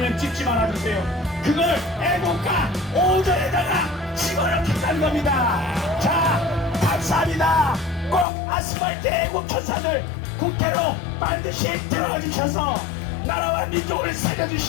찍지 말아주세요. 그걸 애국가 5절에다가 집어넣겠다는 겁니다. 자 감사합니다. 꼭 아스팔트 애국 천사들 국회로 반드시 들어가 주셔서 나라와 민족을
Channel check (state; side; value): drops out; right; at 8.2 s